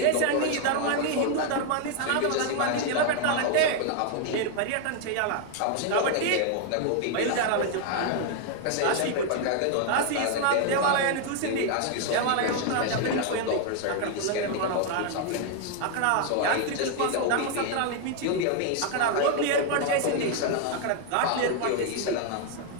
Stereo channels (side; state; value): both; different; correlation 0.00